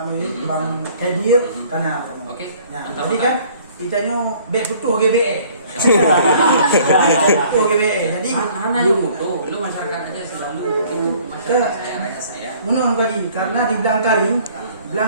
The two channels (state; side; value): inverted; both; correlation -0.56